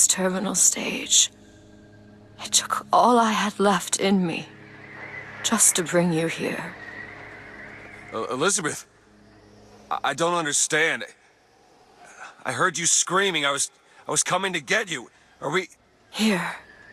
terminal stage. It took all I had left in me just to bring you here. Elizabeth, I don't understand. I heard you screaming. I was coming to get you. Are we... Here.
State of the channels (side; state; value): both; identical; correlation 1.00